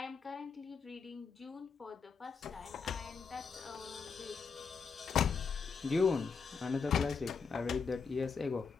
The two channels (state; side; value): quieter; right; 5.5 dB